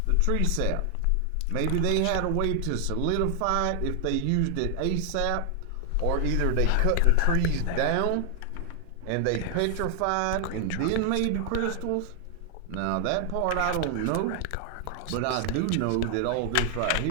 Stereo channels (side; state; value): both; different; correlation 0.00